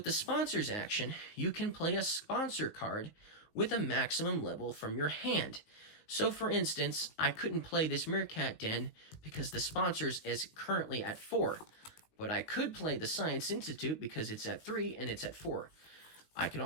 the sponsors action, you can play a sponsor card with a maximum level from your hand. So for instance, I couldn't play this Meerkat Den because the sponsors is currently at 4. But I could play the Science Institute because it's at 3 and it's at 4. I can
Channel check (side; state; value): right; late; 18 ms